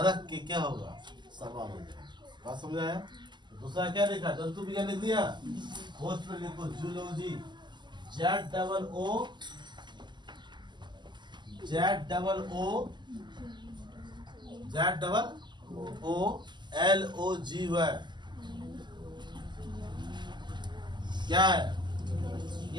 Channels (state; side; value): late; left; 0.21 ms